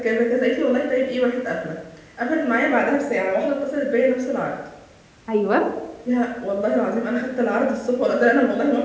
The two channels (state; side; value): identical; both; correlation 1.00